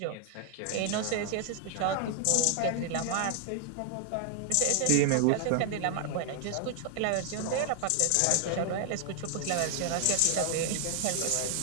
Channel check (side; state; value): both; different; correlation 0.00